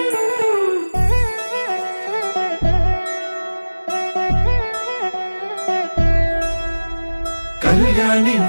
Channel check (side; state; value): both; inverted; correlation -1.00